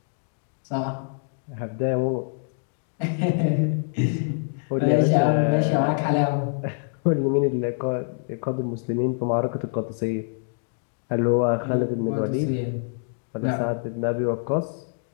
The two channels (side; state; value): right; silent; 60 dB below the other